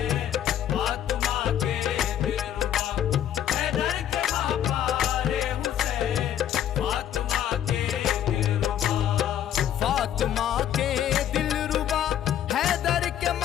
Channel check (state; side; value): quieter; right; 10.6 dB